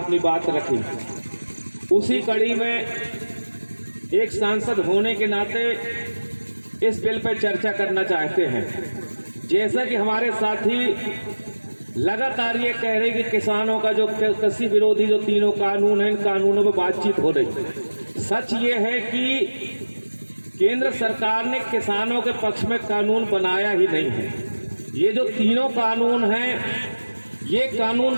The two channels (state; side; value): inverted; both; correlation -1.00